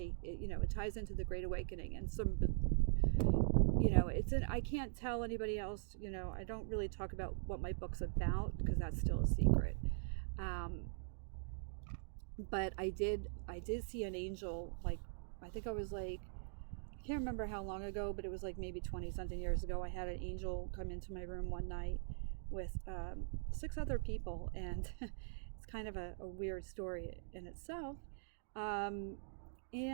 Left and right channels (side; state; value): left; silent; digital silence